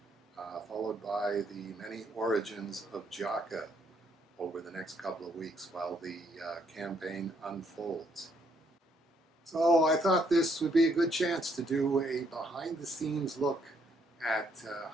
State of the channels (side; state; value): both; normal; correlation 0.71